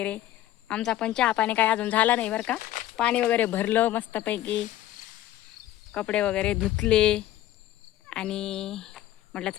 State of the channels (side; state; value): right; quieter; 13.6 dB